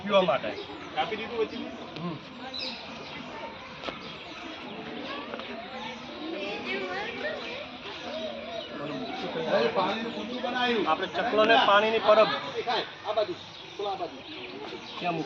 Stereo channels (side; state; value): both; identical; correlation 1.00